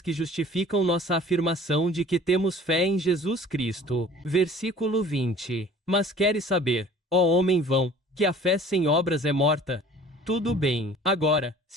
que justificam nossa afirmação de que temos fé em Jesus Cristo. Versículo 20. Mas queres saber, ó homem vão, que a fé sem obras é morta? Tudo bem. Agora,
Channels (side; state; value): both; normal; correlation 0.48